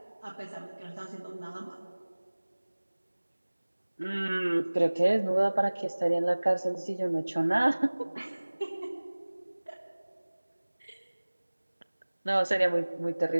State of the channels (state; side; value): inverted; both; correlation -1.00